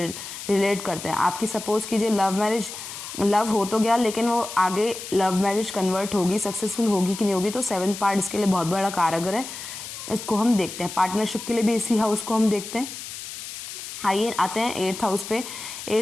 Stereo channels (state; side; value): noise; left; hiss, 10 dB below the sound